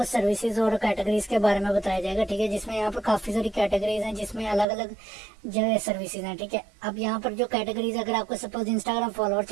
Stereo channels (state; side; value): drops out; left; at 4.7 s